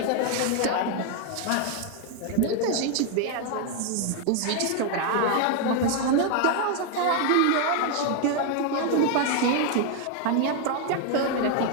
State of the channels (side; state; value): both; different; correlation 0.01